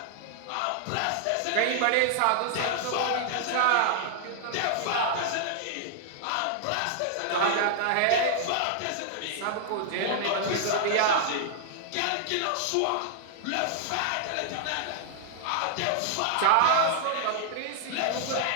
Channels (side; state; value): both; different; correlation -0.01